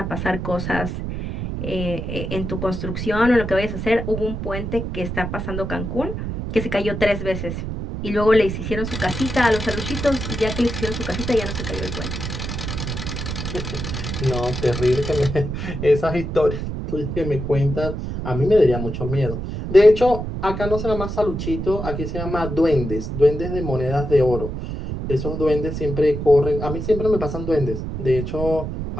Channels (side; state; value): right; noise; rumble, 5 dB below the sound